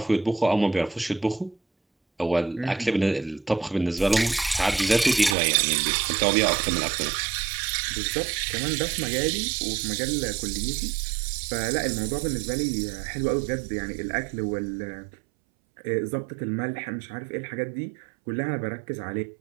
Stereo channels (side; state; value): left; drops out; at 5.4 s